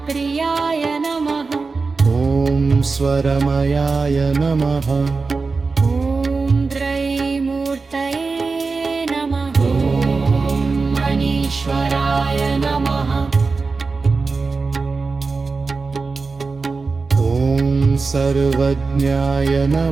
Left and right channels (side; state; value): left; quieter; 4.2 dB